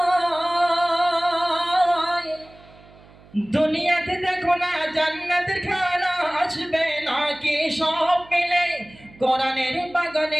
দুনিয়াতে দেখো না জান্নাতের খানা আসবে নাকি সব মিলে কোরআনের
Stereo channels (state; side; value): noise; right; hum, 24 dB below the sound